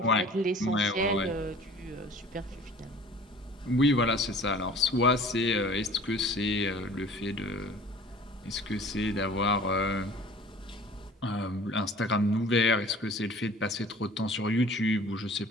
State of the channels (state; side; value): normal; both; correlation 0.47